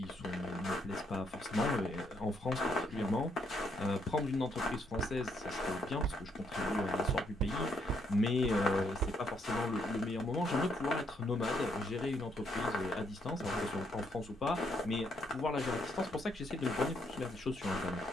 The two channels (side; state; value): both; normal; correlation 0.73